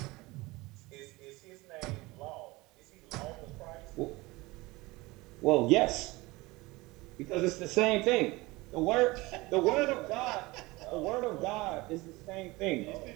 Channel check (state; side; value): quieter; left; 21.8 dB